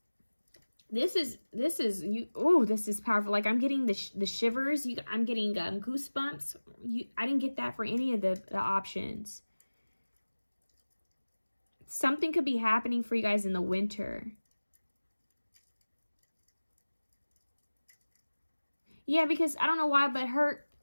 This is you. Oh, this is powerful. Like I'm getting the shivers. I'm getting goosebumps. I didn't get that for any of the options. Something could be happening for you guys in the winter. Yeah, because I don't know why, but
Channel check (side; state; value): both; inverted; correlation -1.00